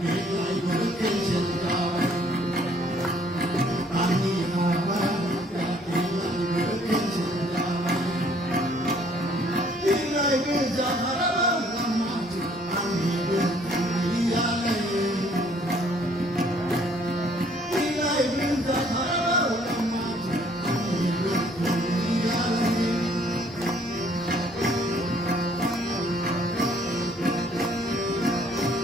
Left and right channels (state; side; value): normal; both; correlation 0.61